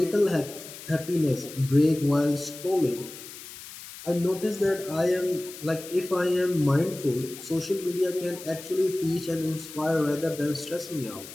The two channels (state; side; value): noise; left; hiss, 14 dB below the sound